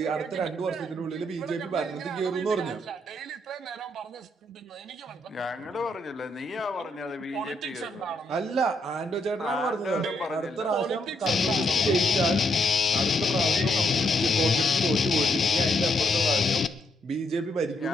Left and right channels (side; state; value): both; normal; correlation 0.76